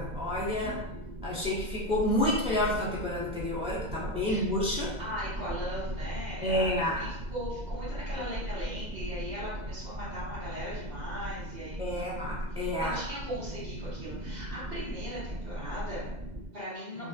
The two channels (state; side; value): late; left; 2.0 ms